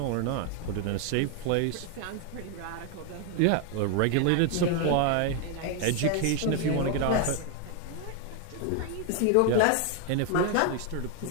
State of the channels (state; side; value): different; both; correlation 0.01